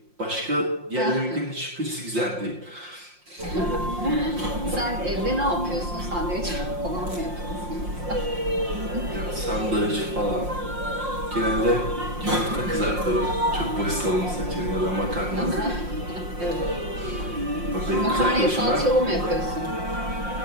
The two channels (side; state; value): left; late; 5.6 ms